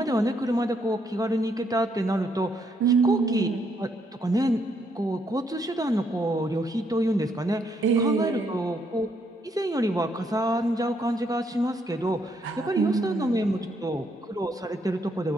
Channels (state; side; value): normal; both; correlation 0.73